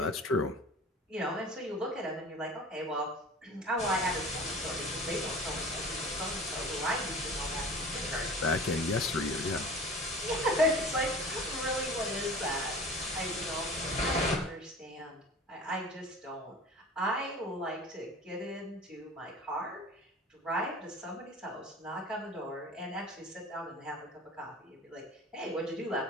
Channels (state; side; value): normal; both; correlation 0.39